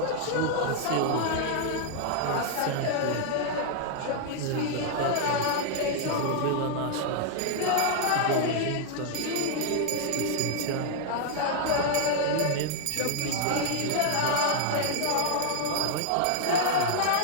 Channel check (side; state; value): both; different; correlation 0.00